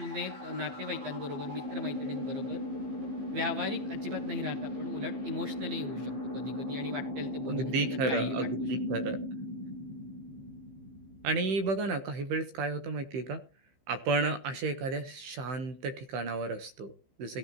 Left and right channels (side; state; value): left; late; 16 ms